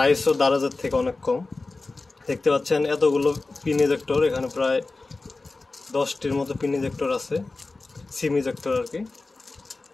দারাজের থেকে অনেক কম। দেখতে পাচ্ছেন এতগুলো পিন ইজেক্টর, এখানে প্রায় 10টির মতো পিন ইজেক্টর আছে, সিম ইজেক্টর আর কি।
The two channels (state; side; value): quieter; right; 3.5 dB